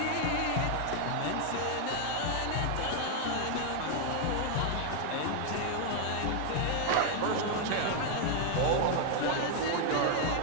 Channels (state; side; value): different; both; correlation 0.00